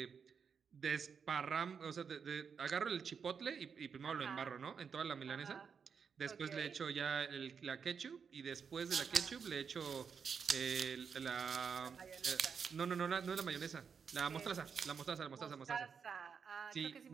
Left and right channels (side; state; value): left; quieter; 6.3 dB